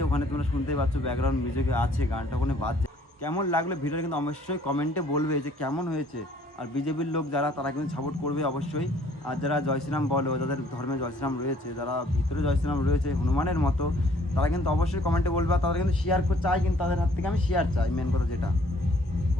ওখানে, তোমরা শুনতেই পাচ্ছ ব্যাকগ্রাউন্ড মিউজিকে আছে, গানটা ওখানে বাজছে। কেমন লাগলো ভিডিওটা কিন্তু অবশ্যই কমেন্টে বলবে যে কেমন হয়েছে। আর বিজেপির লোক যারা, তারা কিন্তু সাপোর্ট করবে অবশ্যই। আর যারা জয় শ্রীরাম বলো, যাদের ধর্মে জয় শ্রীরাম রয়েছে, যারা ভিতরে জয় শ্রীরাম রয়েছে হনুমানের মতো, তারা কিন্তু অবশ্যই কমেন্টে বলবে। আর তারা কিন্তু শেয়ার চাই, কিন্তু তাদের হাত থেকে আমি শেয়ার চাই, মেন কথা যেটা।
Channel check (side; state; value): both; normal; correlation 0.59